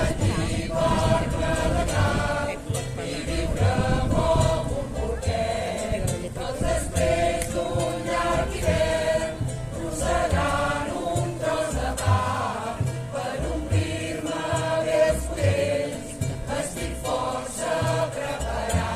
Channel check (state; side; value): identical; both; correlation 1.00